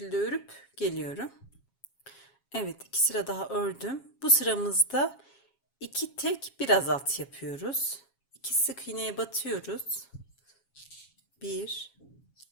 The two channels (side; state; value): right; late; 7.3 ms